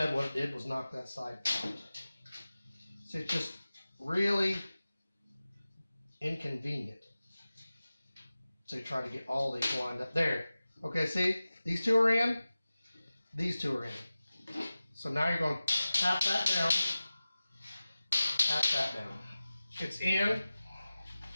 what it did was knock that side out. So it's just really inconvenient to try to get all these lined up. There. Okay, see? These two are in. These two are in. So now you're going to tap that down. Tap that down. It's in.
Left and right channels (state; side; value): inverted; both; correlation -0.96